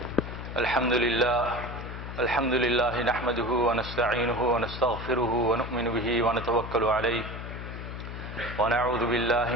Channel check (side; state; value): left; noise; hum, 8 dB below the sound